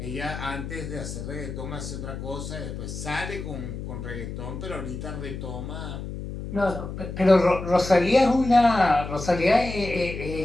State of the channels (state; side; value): noise; left; hum, 8 dB below the sound